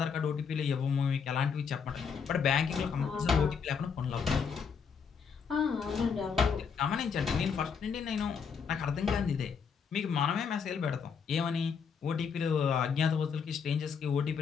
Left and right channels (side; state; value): right; quieter; 6.3 dB